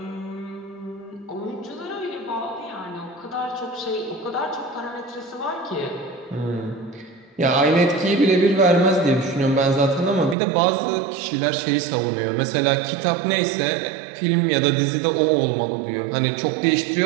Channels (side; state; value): left; drops out; at 10.4 s